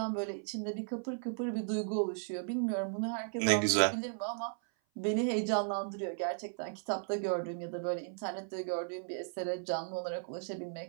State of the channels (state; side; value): silent; left; 54 dB below the other